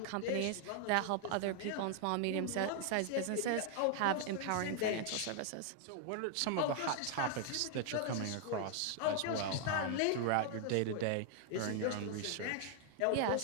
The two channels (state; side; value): different; both; correlation 0.00